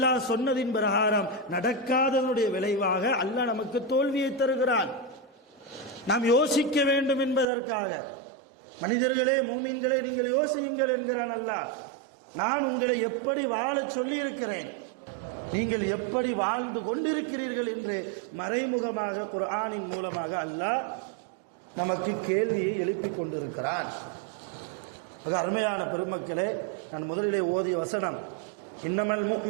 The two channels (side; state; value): left; drops out; at 7.5 s